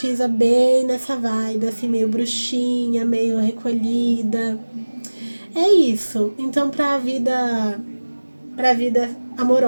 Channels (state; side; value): inverted; both; correlation -1.00